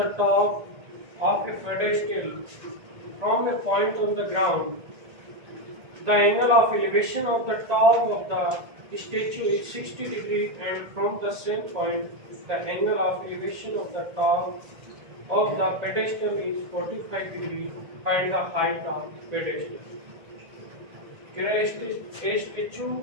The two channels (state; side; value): late; left; 1.8 ms